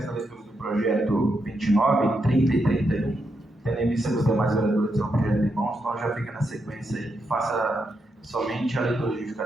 da leitura do projeto 29, 30 e 31. Tendo em vista que os demais vereadores têm um projeto em mãos, então já fica na sequência aí. Faça somente a leitura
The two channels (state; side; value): normal; both; correlation 0.83